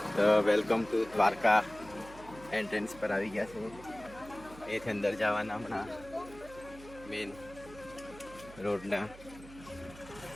તો વેલકમ ટુ દ્વારકા. એન્ટ્રન્સ પર આવી ગયા છે. એથી અંદર જવાના હમણાં મેન રોડના.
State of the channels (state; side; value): noise; right; hum, 18 dB below the sound